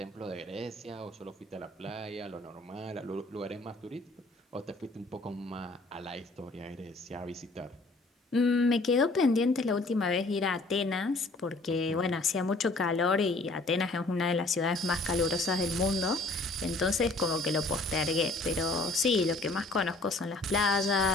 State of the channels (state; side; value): quieter; right; 3.0 dB